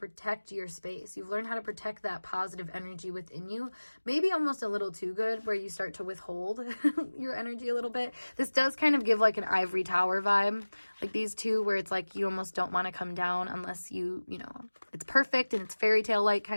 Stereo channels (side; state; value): both; inverted; correlation -1.00